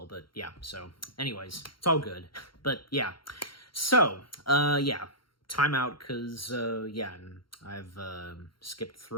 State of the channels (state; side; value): late; right; 0.73 ms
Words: but yeah, so, anyways, it's all good. But, yeah. So, time out, because, and I've skipped